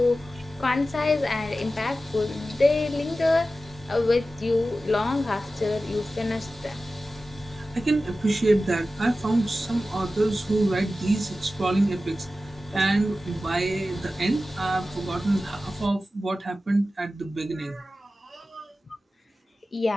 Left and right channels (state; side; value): normal; both; correlation 0.94